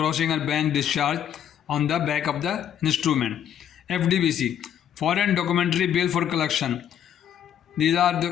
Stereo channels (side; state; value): right; quieter; 9.6 dB